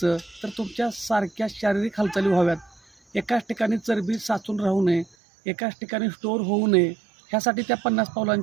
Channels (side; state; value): left; drops out; at 5.1 s